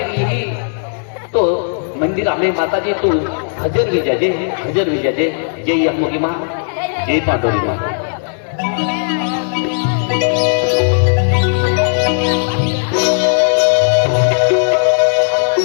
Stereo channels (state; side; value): silent; right; 67 dB below the other